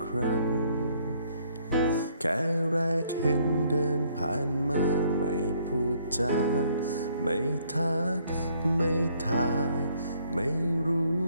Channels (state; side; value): inverted; both; correlation -0.66